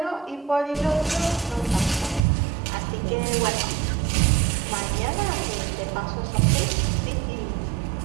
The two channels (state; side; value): drops out; left; at 2.2 s